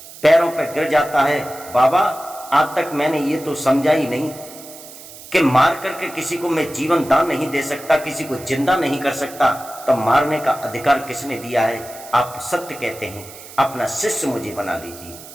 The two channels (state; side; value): noise; right; hiss, 17 dB below the sound